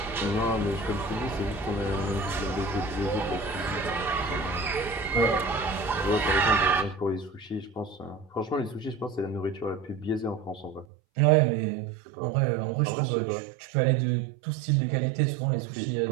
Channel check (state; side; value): drops out; left; at 10.9 s